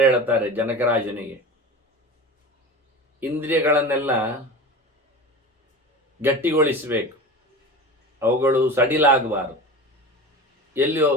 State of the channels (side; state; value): both; normal; correlation 0.32